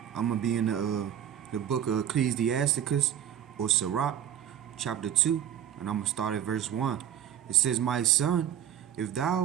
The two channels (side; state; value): left; quieter; 10.1 dB